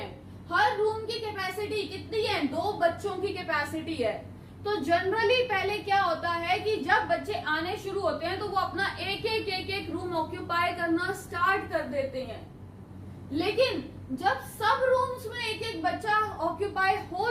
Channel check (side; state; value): both; identical; correlation 1.00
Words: हर रूम की कैपेसिटी कितनी है, 2 बच्चों की कैपेसिटी है। तो जनरली पहले क्या होता है कि जब बच्चे आने शुरू होते हैं तो वो अपना एक एक रूम ऑक्यूपाई करना स्टार्ट कर देते हैं, लेकिन जब सब रूम्स में एक एक बच्चा ऑक्यूपाई हो